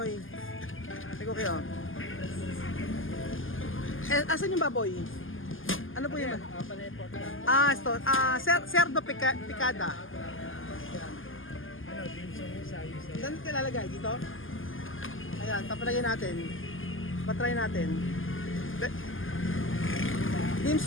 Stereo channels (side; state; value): right; late; 0.59 ms